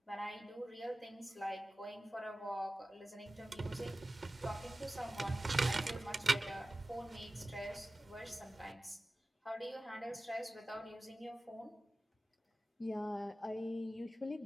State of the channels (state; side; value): normal; both; correlation 0.95